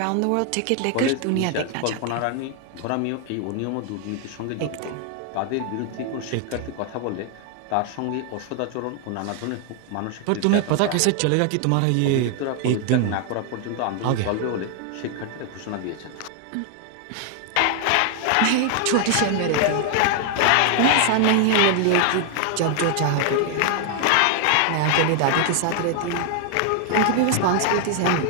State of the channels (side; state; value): both; different; correlation 0.00